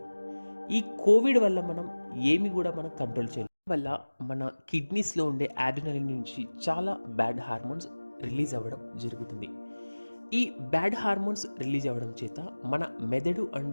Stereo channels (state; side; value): inverted; both; correlation -1.00